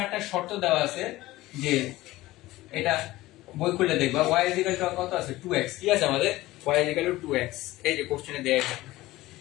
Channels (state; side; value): quieter; right; 17.7 dB